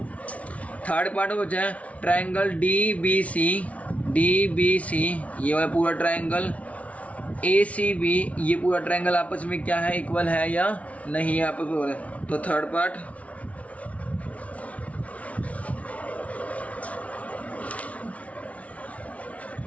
Third part बचा है ट्रायंगल डी बी सी, ये वाला पूरा ट्रायंगल, ए सी बी, ये पूरा ट्रायंगल आपस में क्या है इक्वल है या नहीं है आपस में। तो थर्ड पार्ट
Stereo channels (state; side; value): late; right; 0.066 ms